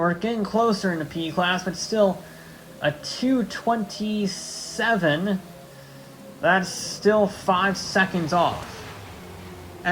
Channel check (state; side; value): identical; both; correlation 1.00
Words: getting closer in the P class, but still a 2:27. That's still 5 seconds off.